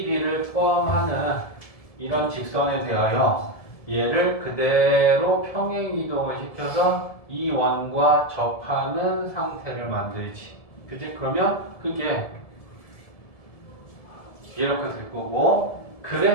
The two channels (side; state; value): right; late; 1.7 ms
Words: B를 포함하는 이런 직선에 대하여 얘를 그대로 평행 이동을 시켜서 이 원과 접하는 상태를 만들지. 그지? 그러면 그게 이렇게 될 거고,